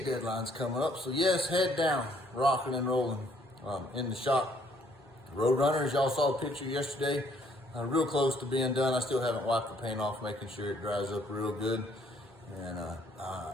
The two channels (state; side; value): normal; both; correlation 0.65